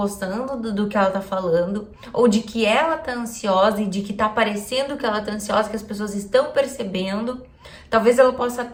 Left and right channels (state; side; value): identical; both; correlation 1.00